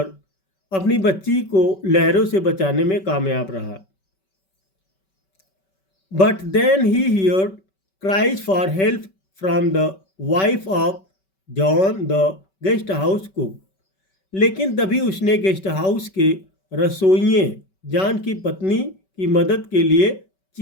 अपनी बच्ची को लहरों से बचाने में कामयाब रहा। But then he heard cries for help from the wife of John the guest house cook, लेकिन तभी उसने गेस्ट हाउस के रसोइये जॉन की पत्नी की मदद के लिए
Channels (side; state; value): right; late; 5.2 ms